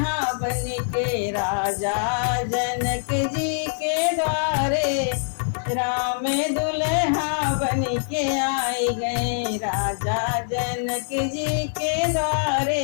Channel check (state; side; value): silent; right; digital silence